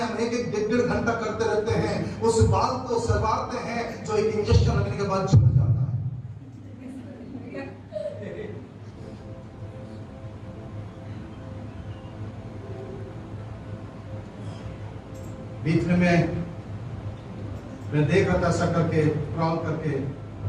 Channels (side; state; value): both; identical; correlation 1.00